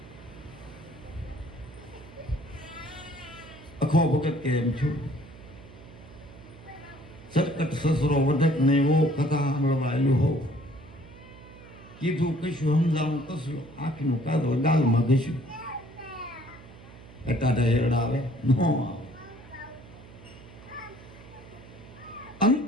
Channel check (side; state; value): right; noise; hum, 19 dB below the sound